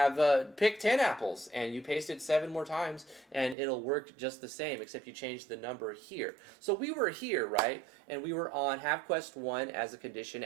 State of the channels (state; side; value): drops out; left; at 3.6 s